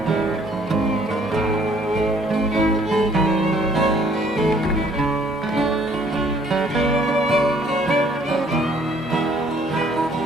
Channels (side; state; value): both; normal; correlation 0.61